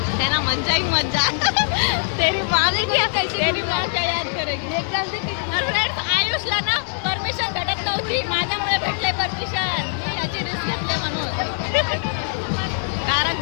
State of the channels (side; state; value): right; silent; 64 dB below the other